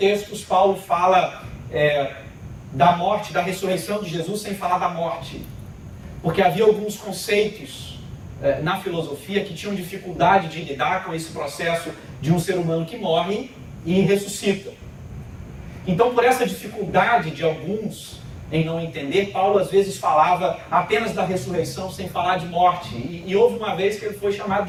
Paulo fala da morte, da ressurreição de Jesus sem falar da morte. Porque havia alguns conceitos na filosofia que tinham dificuldade de lidar com esse processo de um ser humano que morre e ressuscita. Então, por essa dificuldade de alguns em não entender, Paulo às vezes falava apenas da ressurreição sem falar de morte. E houve uma vez que ele foi chamado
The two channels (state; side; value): identical; both; correlation 1.00